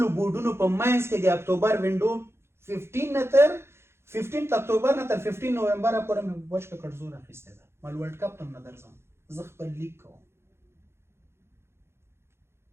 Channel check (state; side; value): late; left; 0.12 ms